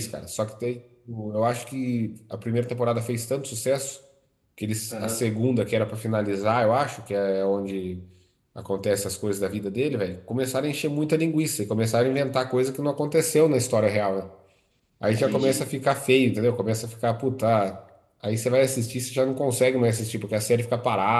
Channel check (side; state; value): both; identical; correlation 1.00